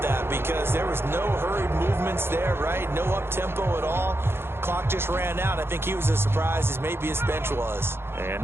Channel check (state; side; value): late; left; 0.11 ms